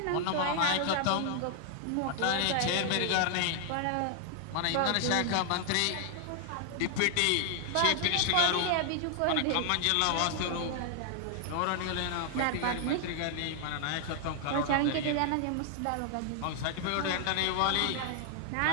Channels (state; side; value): different; both; correlation 0.00